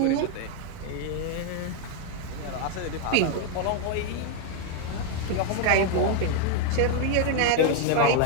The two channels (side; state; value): both; different; correlation 0.01